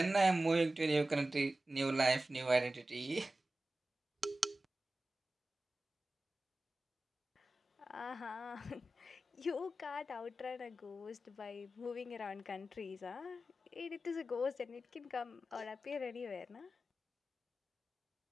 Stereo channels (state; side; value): normal; both; correlation 0.95